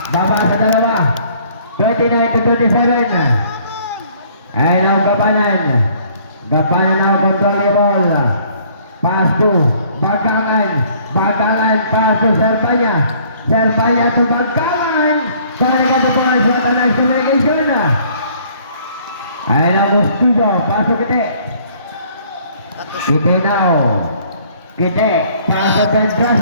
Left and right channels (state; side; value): inverted; both; correlation -0.59